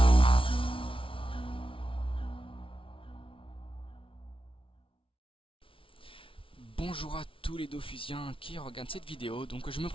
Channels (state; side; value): late; right; 0.25 ms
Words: Bonjour à tous les Dofusiens qui regardent cette vidéo. Donc je me